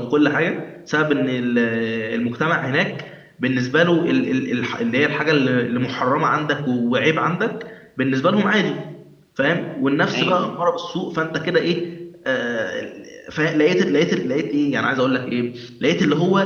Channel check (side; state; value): both; identical; correlation 1.00